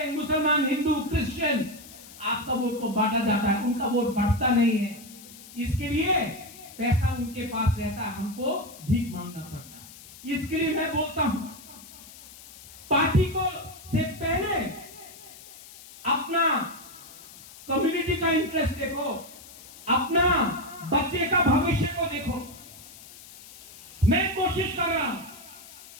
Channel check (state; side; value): noise; left; hiss, 18 dB below the sound